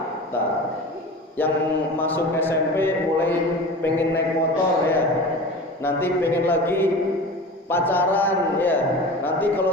Yang masuk SMP mulai pengen naik motor, ya, nanti pengen lagi pacaran, ya, nanti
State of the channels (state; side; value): normal; both; correlation 0.34